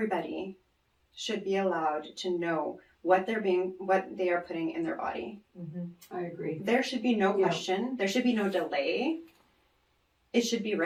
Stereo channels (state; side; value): identical; both; correlation 1.00